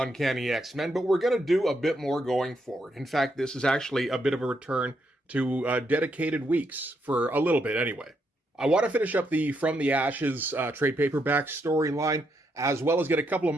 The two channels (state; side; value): normal; both; correlation 0.78